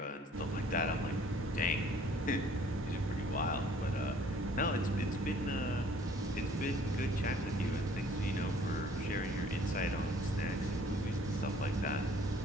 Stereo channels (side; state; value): both; normal; correlation 0.56